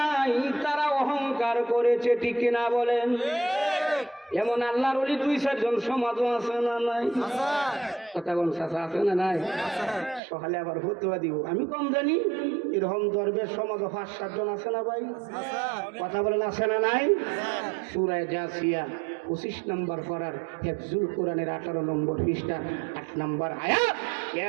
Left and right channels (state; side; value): drops out; left; at 10.2 s